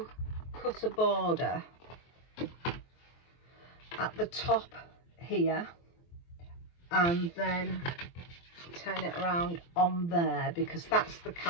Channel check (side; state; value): right; late; 23 ms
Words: cut a border at the top here and then turn it around on there, because that's the